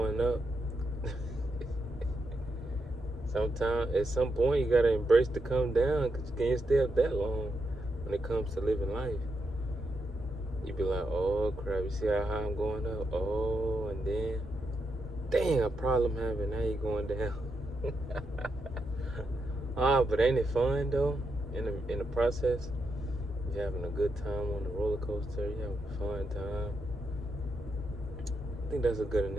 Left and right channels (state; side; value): normal; both; correlation 0.83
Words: up, sometimes at some point you gotta embrace the come down, because you can't stay up that long when it comes to living life. You be like, oh crap, you see how high I'm going up? Oh, and then dang, a problem having, now you're going down. But ain't it fun though? In the process, you're having a good time on the roller coaster. You're having a fun time. I think that's a good